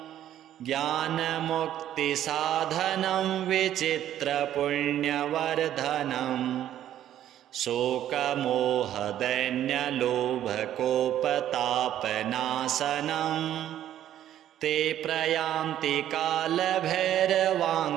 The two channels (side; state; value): left; quieter; 11.6 dB